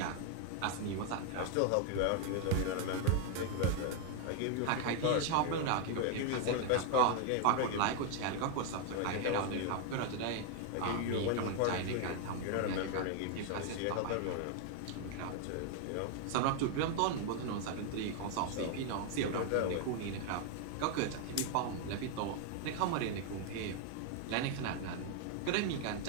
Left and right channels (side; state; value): both; different; correlation 0.00